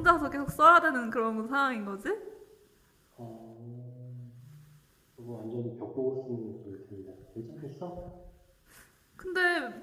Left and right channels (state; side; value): identical; both; correlation 1.00